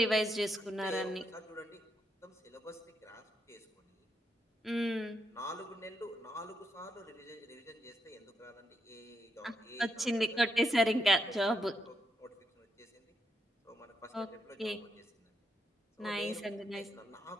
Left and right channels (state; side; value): normal; both; correlation 0.80